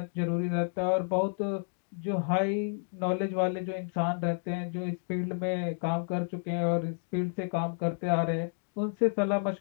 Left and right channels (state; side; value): silent; right; digital silence